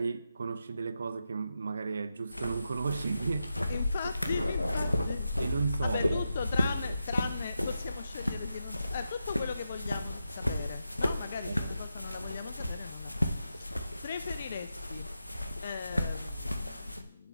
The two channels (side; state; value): both; inverted; correlation -0.87